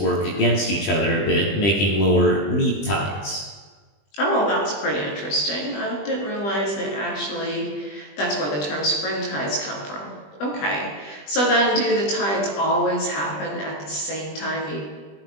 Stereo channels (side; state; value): right; late; 20 ms